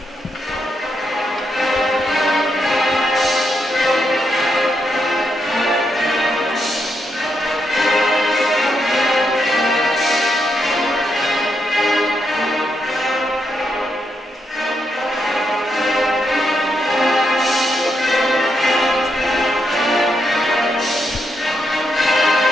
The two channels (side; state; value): both; normal; correlation 0.81